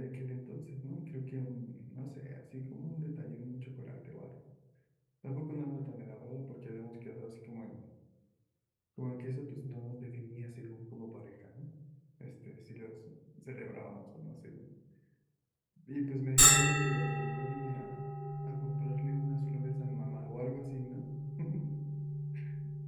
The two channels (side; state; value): both; identical; correlation 1.00